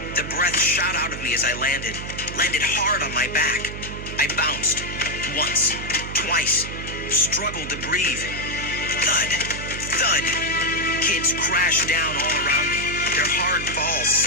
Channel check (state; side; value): noise; right; hum, 9 dB below the sound